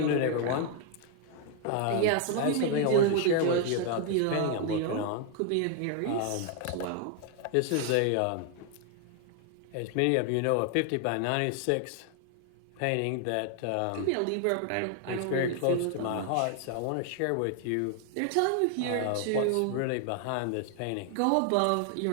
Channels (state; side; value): different; both; correlation 0.00